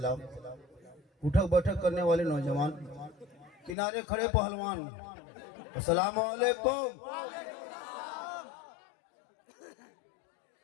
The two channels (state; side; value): drops out; right; at 3.8 s